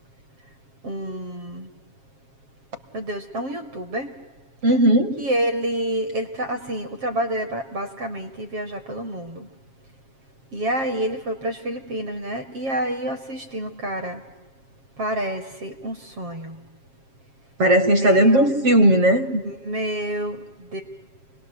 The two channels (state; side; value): late; left; 7.4 ms